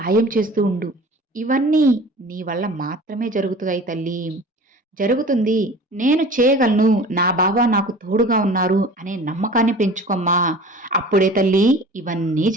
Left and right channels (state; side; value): normal; both; correlation 0.42